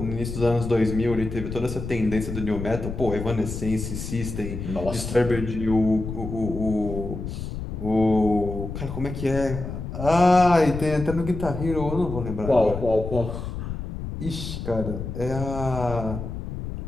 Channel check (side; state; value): left; noise; rumble, 7 dB below the sound